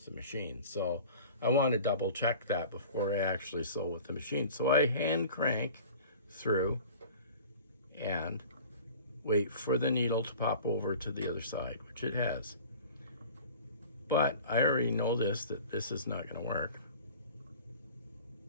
the machine. So I want to double check that before I actually sew with the machine. So I hand crank through and wait for the needle to pop over to the other side, which it has. But I already know that this is not going to work.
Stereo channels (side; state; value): both; inverted; correlation -0.42